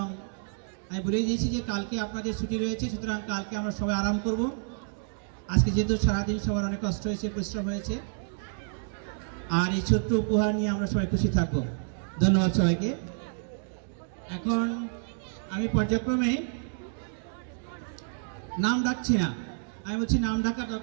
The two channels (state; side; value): silent; left; digital silence